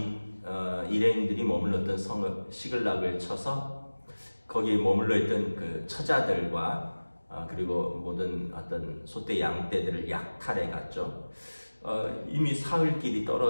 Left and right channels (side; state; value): both; inverted; correlation -1.00